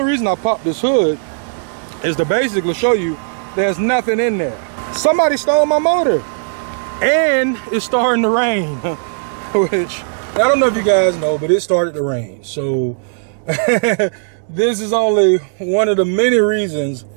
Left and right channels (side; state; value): left; silent; digital silence